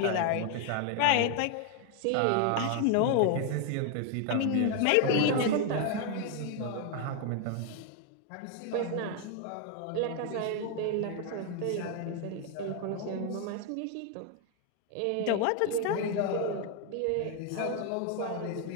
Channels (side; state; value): both; different; correlation 0.01